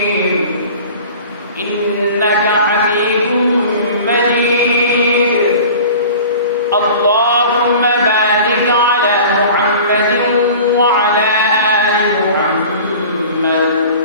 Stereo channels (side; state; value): both; inverted; correlation -0.41